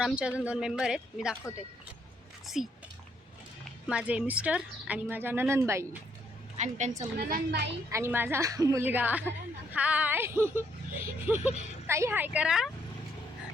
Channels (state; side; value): normal; both; correlation 0.72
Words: आमचे अजून 2 मेंबर आहेत, मी दाखवते. सी माझे मिस्टर आणि माझ्या ननंदबाई आणि त्यांचा मुलगा आणि माझा मुलगा. हाय ताई, हाय करा.